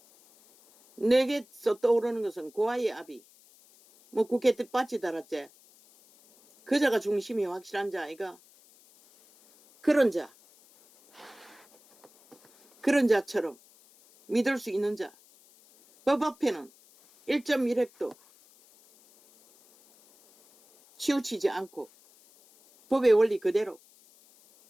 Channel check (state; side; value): noise; left; hiss, 28 dB below the sound